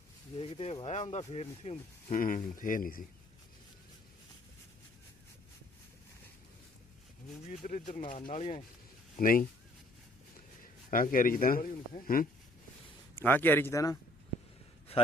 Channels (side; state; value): both; normal; correlation 0.61